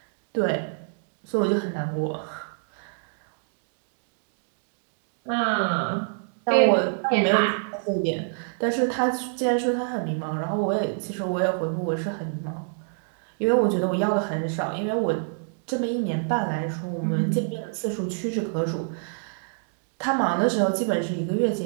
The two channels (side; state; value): left; silent; digital silence